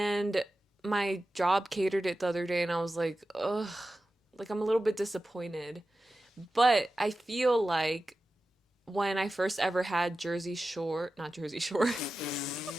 my job catered it the other day and I was like, ugh, like I'm a little bit disappointed. But I feel like when I first ever had Jersey Shore, not Jersey Shore,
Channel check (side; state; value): both; normal; correlation 0.94